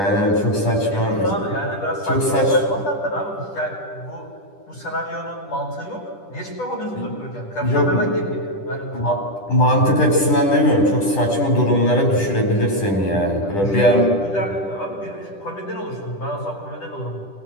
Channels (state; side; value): late; right; 10 ms